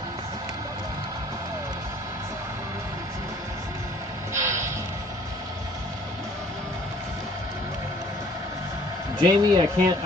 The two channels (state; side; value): normal; both; correlation 0.56